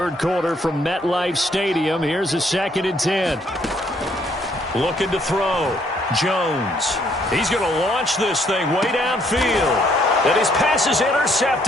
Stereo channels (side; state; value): both; normal; correlation 0.68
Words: quarter from MetLife Stadium. Here's a 2nd and 10. Looking to throw. Jones. He's going to launch this thing way downfield. And his pass is